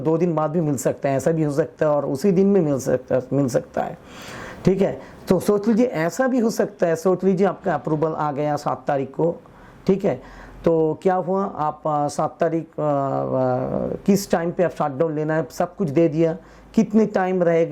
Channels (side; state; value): both; identical; correlation 1.00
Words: 2 दिन बाद भी मिल सकता है, ऐसा भी हो सकता है, और उसी दिन में मिल सकता है, ठीक है। तो सोच लीजिए ऐसा भी हो सकता है, सोच लीजिए आपका अप्रूवल आ गया 7 तारीख को, ठीक है, तो क्या हुआ, आप 7 तारीख किस टाइम पे आप शटडाउन लेना है सब कुछ दे दिया, कितने टाइम